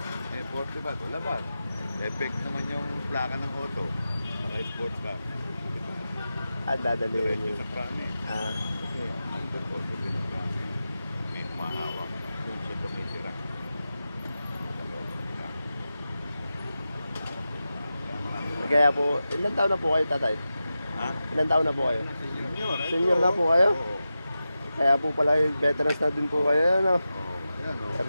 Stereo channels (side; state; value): both; inverted; correlation -0.92